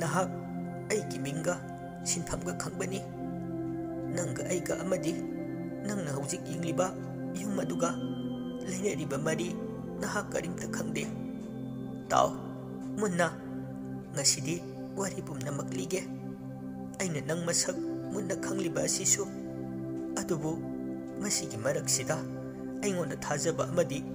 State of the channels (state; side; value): identical; both; correlation 1.00